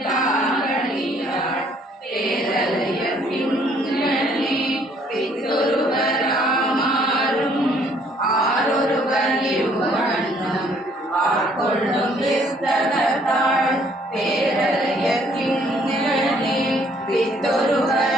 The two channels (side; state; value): both; normal; correlation 0.63